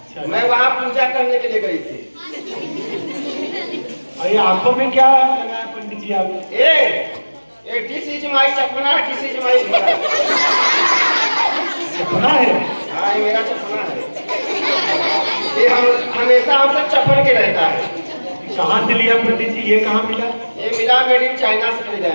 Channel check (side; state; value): both; inverted; correlation -1.00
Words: मैं वहाँ पूजा करने के लिए गई थी। और ये आंखों में क्या लगाया पंडित जी आप? दिस इज माय चपना, दिस इज माय घोड़ा। चपना है? हाँ ये मेरा चपना है। ये हम हमेशा हमसे चपन के रहता है। कहाँ से लिया पंडित जी? ये कहाँ मिला? ये मिला मेड इन चाइना से खरीदा है